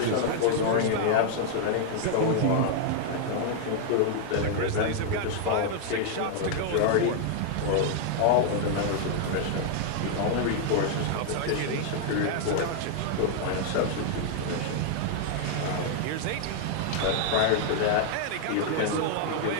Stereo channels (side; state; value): both; different; correlation 0.00